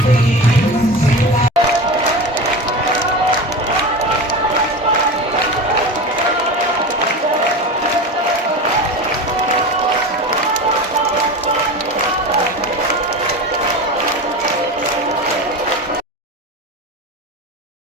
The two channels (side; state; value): both; normal; correlation 0.28